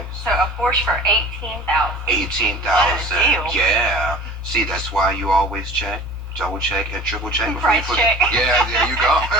So a Porsche for $18,000. $18,000. What a deal. Yeah. See, that's why you always check, double check, and triple check before Price you put check. it. Yeah, there you go.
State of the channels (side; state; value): both; normal; correlation 0.43